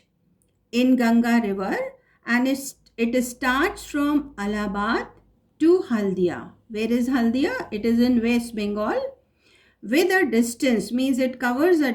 in Ganga River, and it starts from Allahabad to Haldia. Where is Haldia? It is in West Bengal, with a distance, means it covers a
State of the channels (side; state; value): both; identical; correlation 1.00